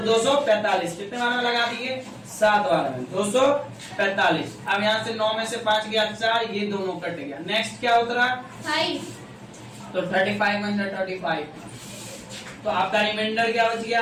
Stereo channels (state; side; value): identical; both; correlation 1.00